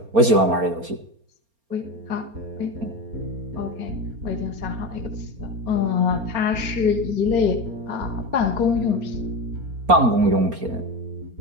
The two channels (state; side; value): late; left; 4.3 ms